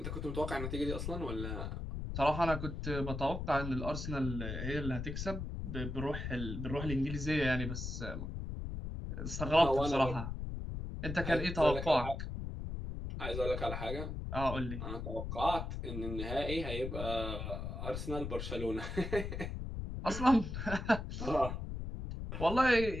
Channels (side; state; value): left; noise; rumble, 5 dB below the sound